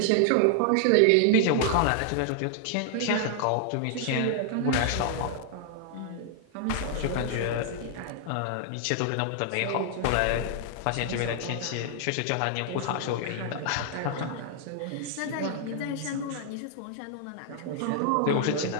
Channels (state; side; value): different; both; correlation 0.00